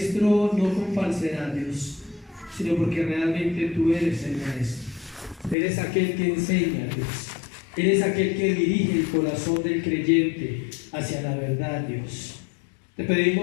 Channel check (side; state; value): right; drops out; at 5.6 s